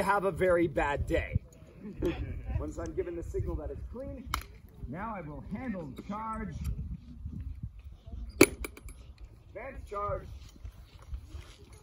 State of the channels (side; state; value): both; identical; correlation 1.00